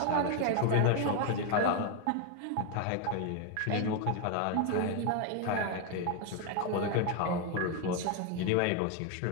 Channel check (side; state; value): both; different; correlation 0.01